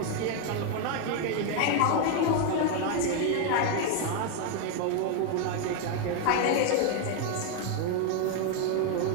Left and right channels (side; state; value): both; different; correlation 0.00